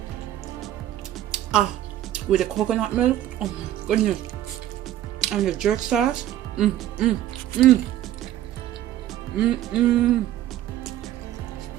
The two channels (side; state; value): left; quieter; 12.8 dB